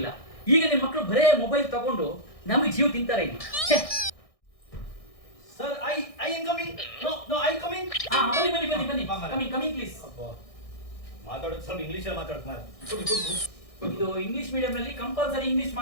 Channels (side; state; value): right; late; 1.6 ms